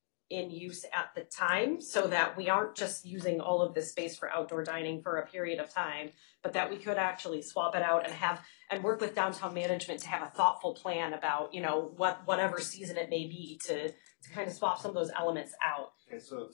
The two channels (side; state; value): right; silent; digital silence